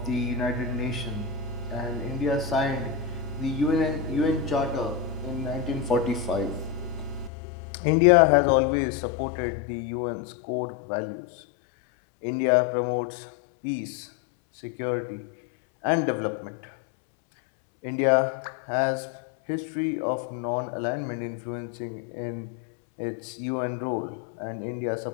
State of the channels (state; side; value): drops out; right; at 7.3 s